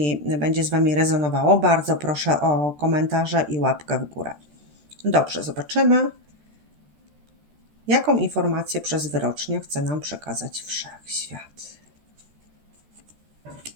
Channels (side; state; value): left; late; 13 ms